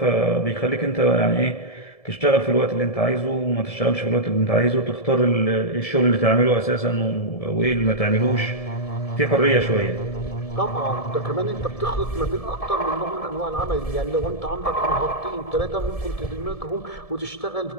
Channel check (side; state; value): right; late; 1.7 ms